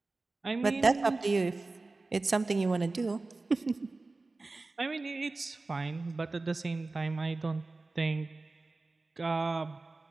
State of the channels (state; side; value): quieter; left; 3.4 dB